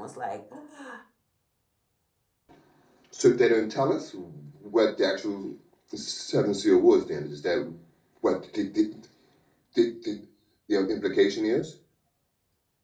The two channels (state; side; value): identical; both; correlation 1.00